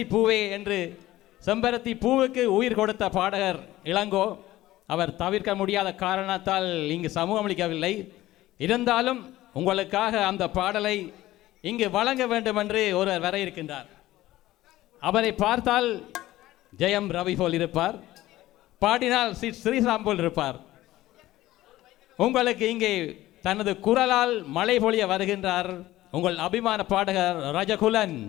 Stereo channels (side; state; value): right; quieter; 16.0 dB